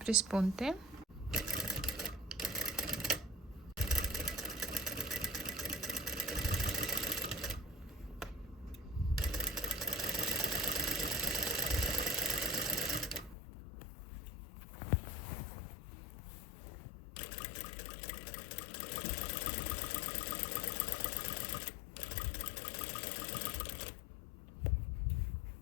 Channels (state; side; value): drops out; right; at 13.4 s